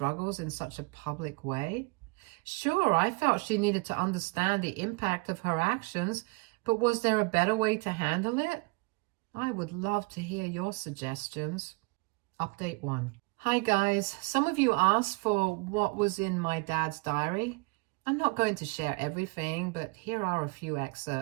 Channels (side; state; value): left; quieter; 28.2 dB